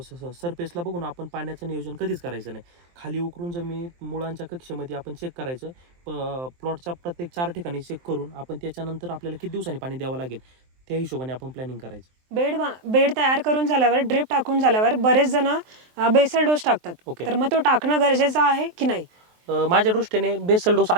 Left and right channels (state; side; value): late; left; 23 ms